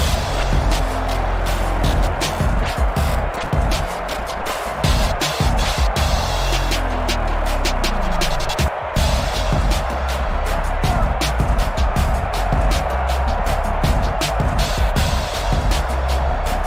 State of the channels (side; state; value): both; identical; correlation 1.00